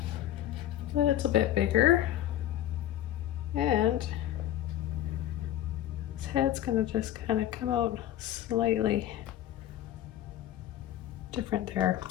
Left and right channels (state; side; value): quieter; right; 12.3 dB